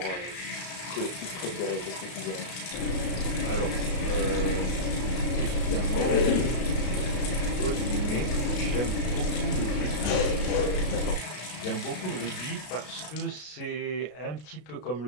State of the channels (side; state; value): right; late; 33 ms